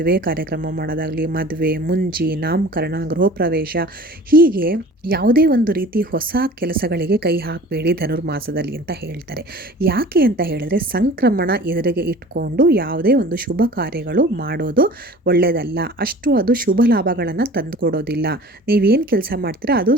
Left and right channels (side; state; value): both; normal; correlation 0.43